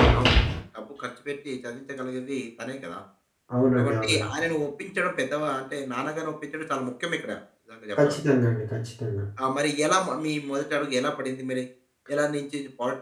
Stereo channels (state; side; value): identical; both; correlation 1.00